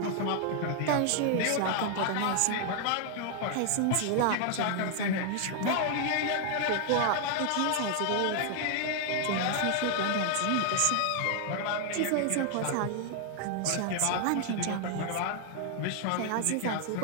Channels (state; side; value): different; both; correlation 0.00